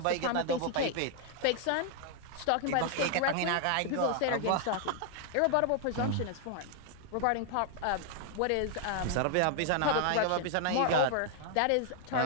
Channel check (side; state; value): both; different; correlation 0.00